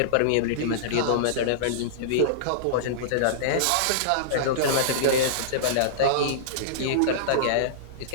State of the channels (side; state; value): both; different; correlation -0.03